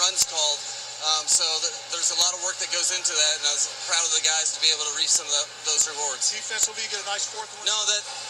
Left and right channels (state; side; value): identical; both; correlation 1.00